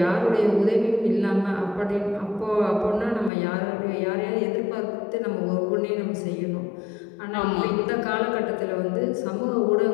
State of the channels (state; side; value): drops out; right; at 3.3 s